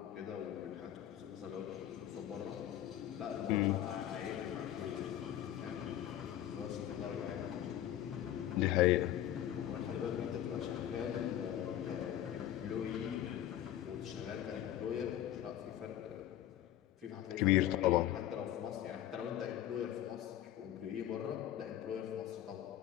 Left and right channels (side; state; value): right; quieter; 11.9 dB